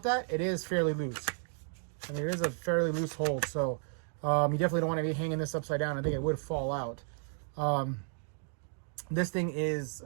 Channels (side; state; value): left; silent; 56 dB below the other